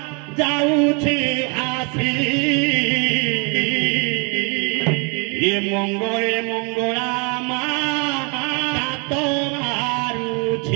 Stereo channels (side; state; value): left; quieter; 33.5 dB